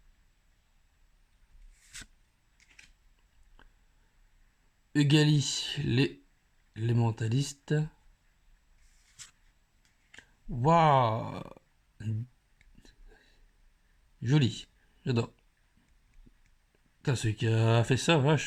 Ugali l'élémentaliste. Waouh, joli, j'adore. Putain, celui qui a fait ça,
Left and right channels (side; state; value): both; identical; correlation 1.00